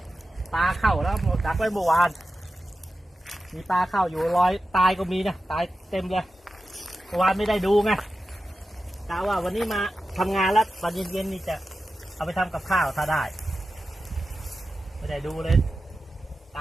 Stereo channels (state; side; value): normal; both; correlation 0.92